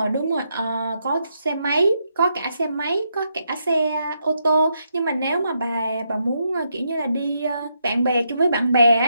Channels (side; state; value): both; inverted; correlation -0.80